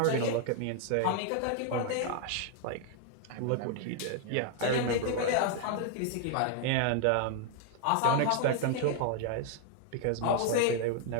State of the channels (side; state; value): both; different; correlation 0.00